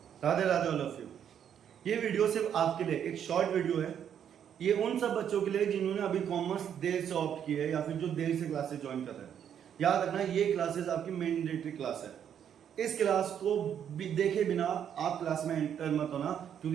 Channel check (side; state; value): left; quieter; 8.9 dB